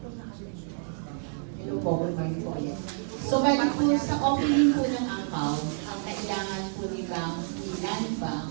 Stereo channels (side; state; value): left; silent; 59 dB below the other